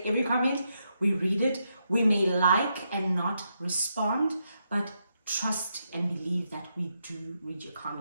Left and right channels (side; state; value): both; inverted; correlation -0.81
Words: every comment, we read it. We may like and not respond, but trust and believe that we do read your